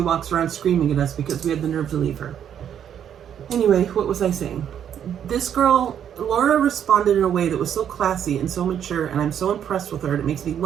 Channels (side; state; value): left; quieter; 9.2 dB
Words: walks around screaming at us because we had the nerve to leave her. Anyway, what was I saying? This girl, Laura, responded in a way that was so classy and so mature, and I'm so impressed with her. It makes me